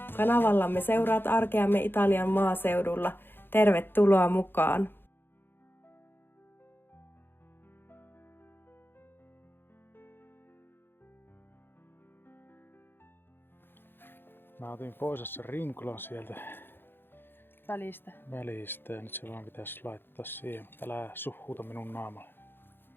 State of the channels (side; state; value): right; late; 0.10 ms